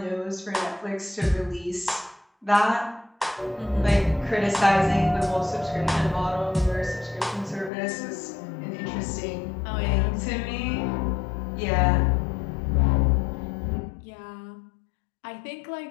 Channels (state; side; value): drops out; right; at 7.7 s